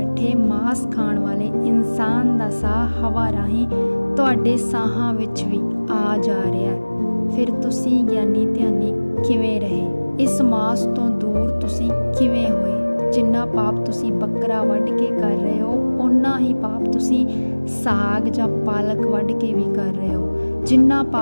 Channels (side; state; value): both; inverted; correlation -1.00